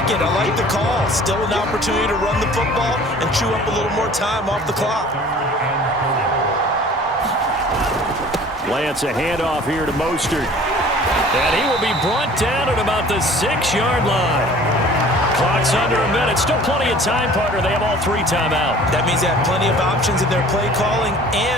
it. I like the call. Still an opportunity to run the football and chew up a little more time off the clock. Lance, a handoff here to Mostert. And he will be brought down at about the 6-yard line. Clock's under a minute. Still plenty of time, partner. They have all 3 timeout. That means they have plenty of options in their play calling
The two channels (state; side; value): normal; both; correlation 0.48